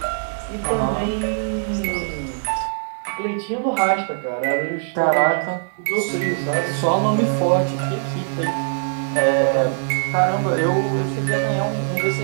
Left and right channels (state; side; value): silent; left; digital silence